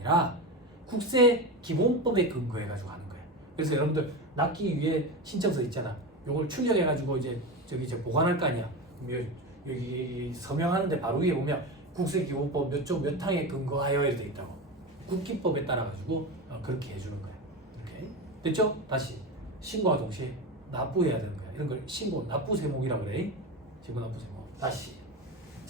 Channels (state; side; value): normal; both; correlation 0.22